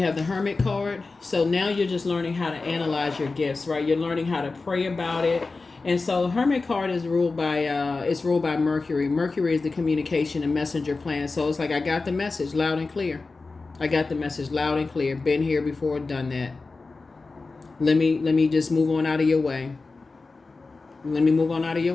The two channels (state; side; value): quieter; right; 3.8 dB